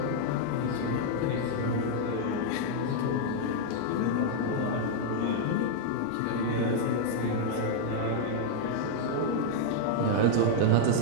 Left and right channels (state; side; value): different; both; correlation -0.01